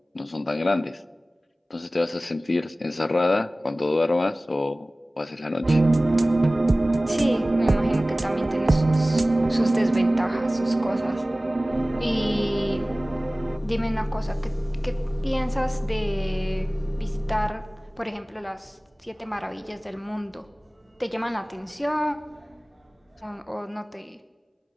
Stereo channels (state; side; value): normal; both; correlation 0.98